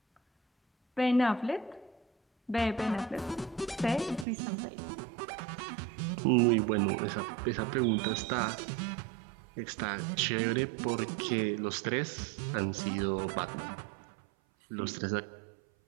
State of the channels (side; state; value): left; drops out; at 4.2 s